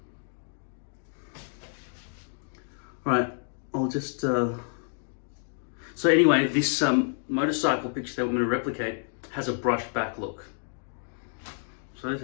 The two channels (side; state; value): right; silent; digital silence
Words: Right, I'll just... So anyway, this motorcycle picture that we're going to replicate has a brushed back look. So this